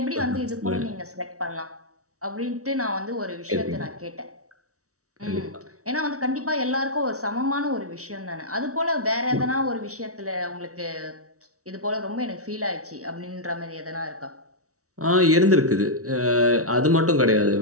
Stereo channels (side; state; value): left; late; 0.65 ms